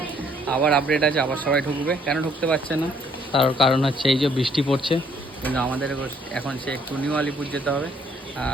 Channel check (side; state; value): both; normal; correlation 0.65